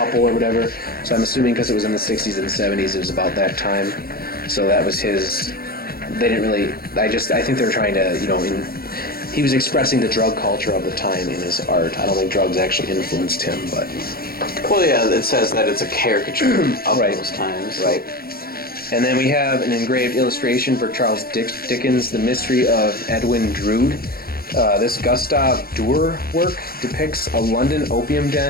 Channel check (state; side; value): late; right; 0.44 ms